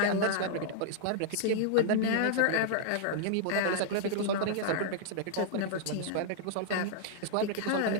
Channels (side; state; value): both; different; correlation -0.01